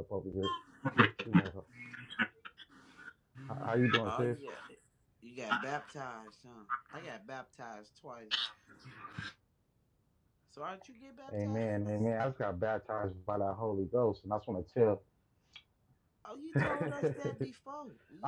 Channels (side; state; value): both; identical; correlation 1.00